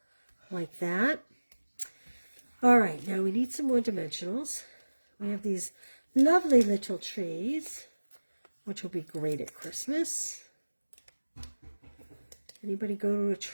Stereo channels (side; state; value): both; inverted; correlation -1.00